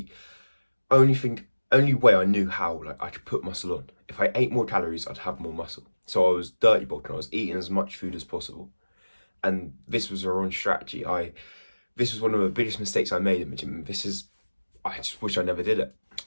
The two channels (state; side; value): inverted; both; correlation -1.00